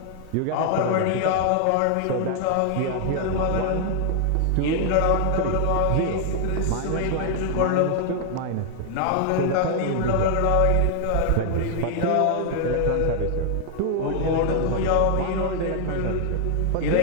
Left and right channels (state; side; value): different; both; correlation 0.00